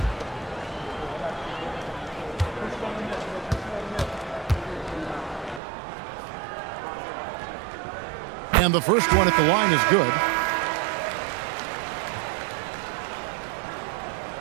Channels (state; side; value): drops out; left; at 5.6 s